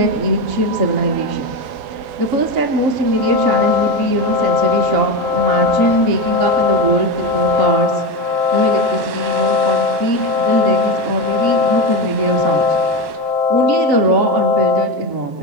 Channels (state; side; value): late; left; 7.4 ms